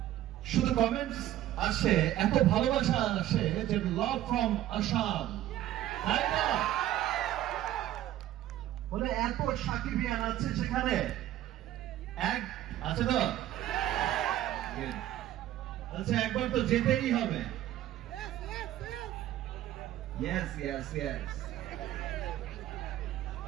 শুধু কমেন্টস আসে, এত ভালোবাসা আসে যে লাভ ফ্রম আসাম, তাই না? বলে এত সাকিবিয়ান আছে সেখানে, এক আছে তো, আচ্ছা একবার তো যেতেই হবে। ইয়েস ইয়েস ইয়েস,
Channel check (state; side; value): quieter; left; 13.3 dB